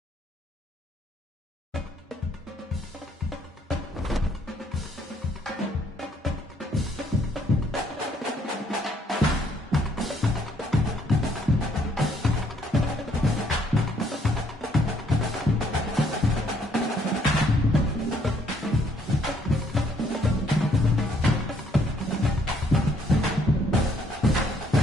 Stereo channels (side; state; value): both; normal; correlation 0.67